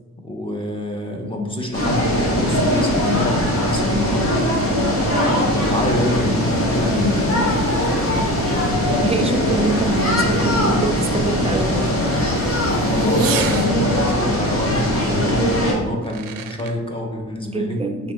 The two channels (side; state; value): both; normal; correlation 0.32